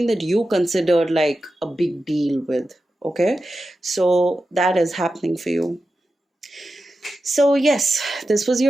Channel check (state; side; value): normal; both; correlation 0.92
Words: that you consider like a big deal with. Okay, so that is happening for you. So, yes, this was